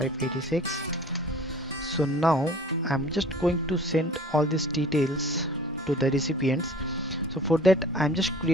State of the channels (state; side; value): normal; both; correlation 0.47